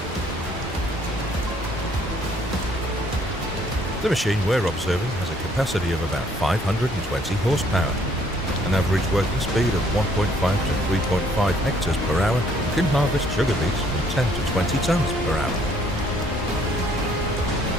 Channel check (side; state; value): both; normal; correlation 0.63